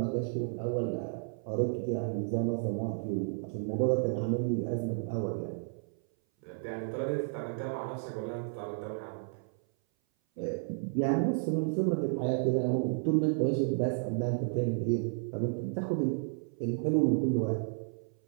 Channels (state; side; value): silent; left; 56 dB below the other